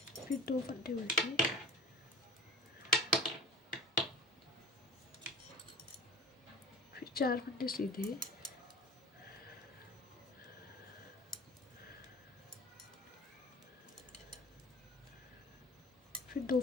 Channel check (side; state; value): both; normal; correlation 0.39